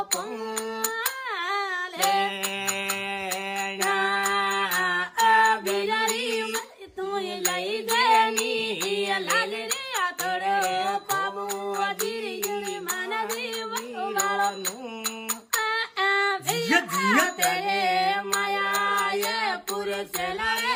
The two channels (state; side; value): identical; both; correlation 1.00